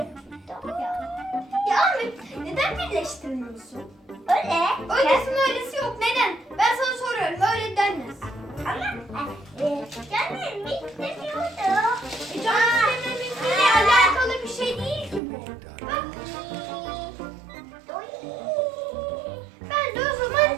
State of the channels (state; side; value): drops out; left; at 15.2 s